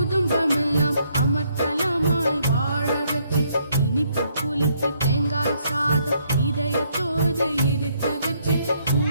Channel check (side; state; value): both; inverted; correlation -0.71